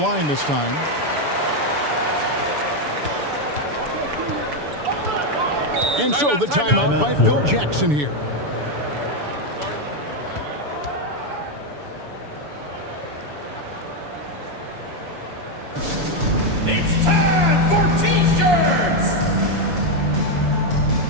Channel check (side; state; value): left; late; 6.9 ms